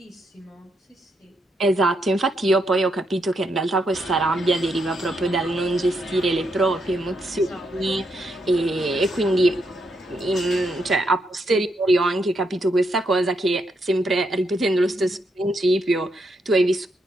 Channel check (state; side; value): normal; both; correlation 0.79